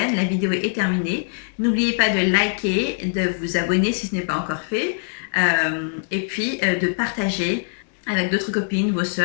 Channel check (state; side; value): silent; right; 61 dB below the other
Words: La vidéo est terminée. N'oubliez pas de liker, de vous abonner si ce n'est pas encore fait, et puis de partager avec d'autres copines, vos